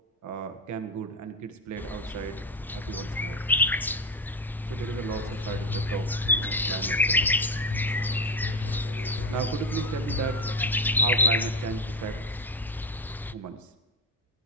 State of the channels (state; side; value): normal; both; correlation 0.15